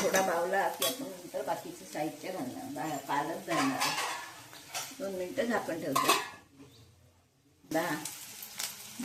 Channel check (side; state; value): both; identical; correlation 1.00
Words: बावला की आपण नंतर बाकीचं साहित्य घालणार, पालक घालणार। 2 मिनिटं झाकण ठेवतो।